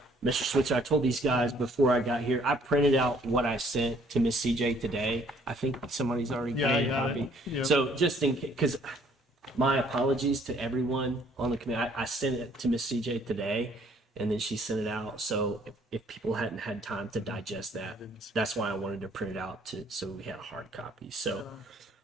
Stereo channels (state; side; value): normal; both; correlation 0.62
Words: Mr. Switzer, I told these guys before I got here, I printed out what I sent to Miss CJ today. I think somebody's already Yeah, I made a got copy. it. Yep. So just in case, because my apologies to everyone on the committee. I sent it to Miss CJ today, and then she sent it out. So if people hadn't had time to digest that, that's why I wanted to print it out so we had a hard copy. So